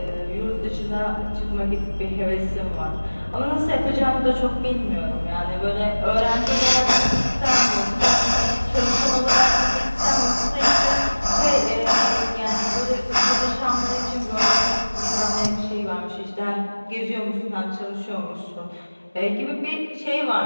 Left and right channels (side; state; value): both; inverted; correlation -1.00